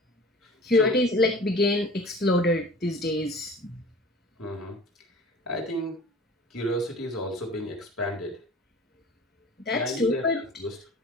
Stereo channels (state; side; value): normal; both; correlation 0.42